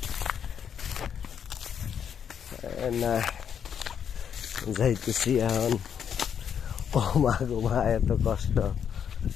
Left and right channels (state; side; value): quieter; right; 8.0 dB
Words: না যাইতেছি এখন। মা এত কষ্ট,